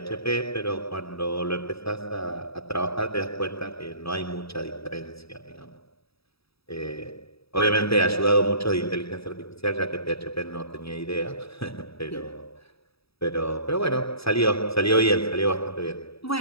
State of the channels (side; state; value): right; late; 0.77 ms